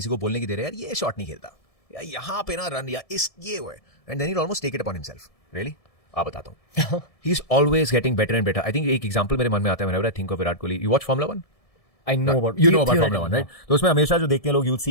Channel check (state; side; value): late; right; 1.7 ms